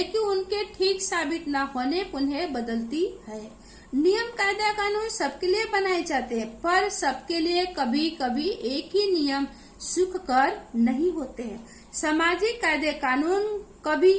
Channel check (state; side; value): identical; both; correlation 1.00